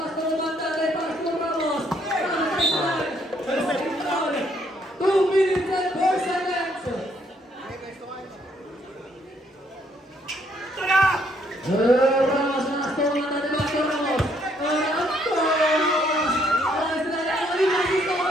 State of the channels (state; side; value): normal; both; correlation 0.69